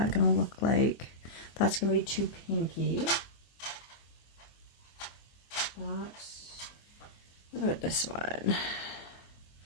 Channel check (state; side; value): late; right; 24 ms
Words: going to look like? That's going to be too pinky. What about this one?